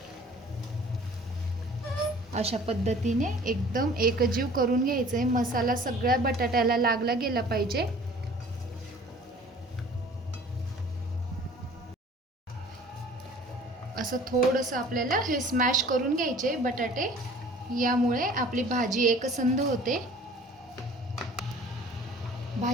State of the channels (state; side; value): normal; both; correlation 0.49